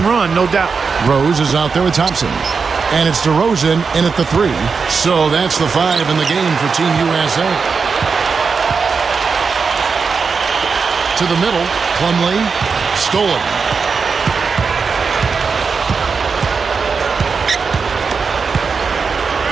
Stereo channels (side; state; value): left; quieter; 5.2 dB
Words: run, no doubt. Rose is out there with Thompson. And it's DeRozan in at the 3. So that's the 5 in the game for Team USA. to the middle. Plumlee, stolen.